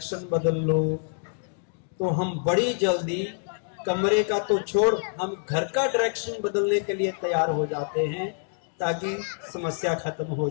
बदल लो, तो हम बड़ी जल्दी कमरे का तो छोड़, हम घर का डायरेक्शन बदलने के लिए तैयार हो जाते हैं ताकि समस्या खत्म हो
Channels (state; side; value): silent; right; digital silence